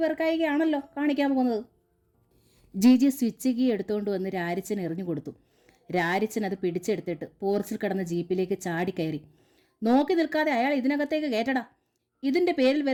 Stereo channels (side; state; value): both; identical; correlation 1.00